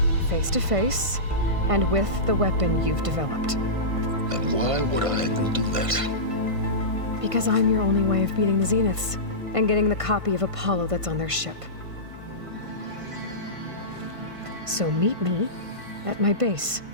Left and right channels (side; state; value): left; late; 1.5 ms